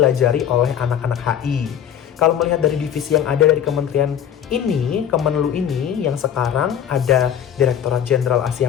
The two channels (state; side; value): quieter; right; 9.2 dB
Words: oleh anak-anak HI. Kalau melihat dari divisi yang ada dari kementerian ini, Kemenlu ini, yang sekarang ada Direktorat Jenderal